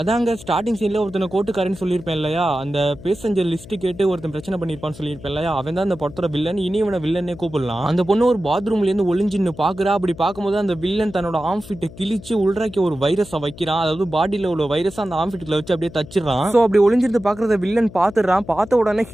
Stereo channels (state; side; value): noise; left; hum, 17 dB below the sound